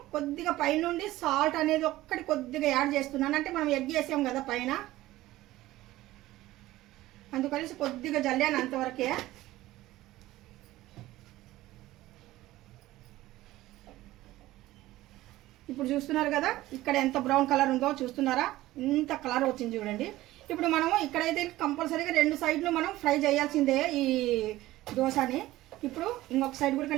కొద్దిగా పైనుండి సాల్ట్ అనేది ఒక్కటి కొద్దిగా యాడ్ చేస్తున్నాను. అంటే మనం ఎగ్ వేసాం కదా పైన, అందుకనేసి కొద్దిగా జల్లాను అంతవరకే. ఇప్పుడు చూస్తున్నారు కదా ఇక్కడ ఎంత బ్రౌన్ కలర్ ఉందో చూస్తున్నారా, ఇంత కలర్ వచ్చింది చూడండి. ఇప్పుడు మనము ఇక్కడైతే కంపల్సరీగా 2 సైడ్లు మనం ఫ్రై చేయాల్సిందే ఈ దోశని. ఇప్పుడు ఇంకొక సైడ్ కూడా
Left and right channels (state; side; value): quieter; left; 16.5 dB